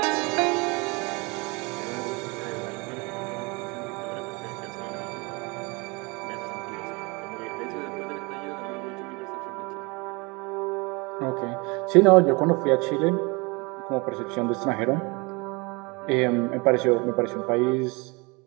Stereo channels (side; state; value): left; quieter; 27.6 dB